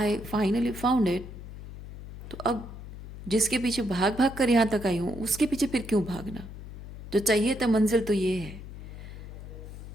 finally found it. तो अब जिसके पीछे भाग भाग कर यहाँ तक आई हूँ, उसके पीछे फिर क्यों भागना? जो चाहिए था मंजिल तो ये है।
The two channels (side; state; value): left; noise; hum, 12 dB below the sound